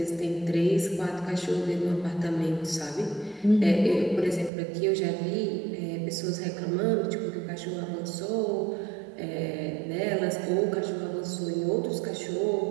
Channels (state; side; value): drops out; left; at 4.5 s